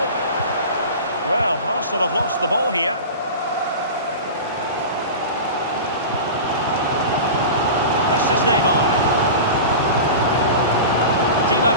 Well, Arsenal have lost the ball here. This is Neymar. Di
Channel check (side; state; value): both; inverted; correlation -0.31